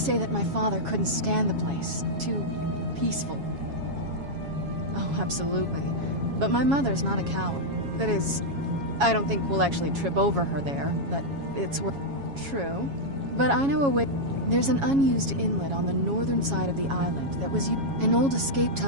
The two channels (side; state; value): left; late; 7.3 ms